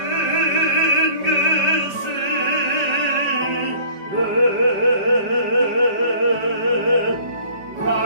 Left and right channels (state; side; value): late; left; 5.3 ms